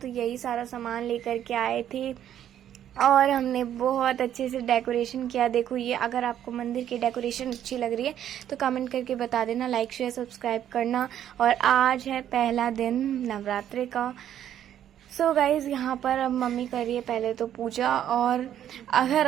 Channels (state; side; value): quieter; left; 10.6 dB